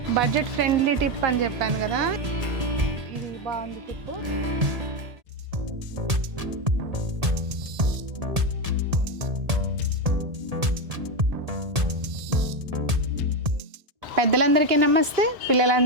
బడ్జెట్ ఫ్రెండ్లీ టిప్ అని చెప్పాను కదా, ఇది బాగుంది టిప్. పెద్దలందరికీ నమస్తే,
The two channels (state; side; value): late; left; 1.8 ms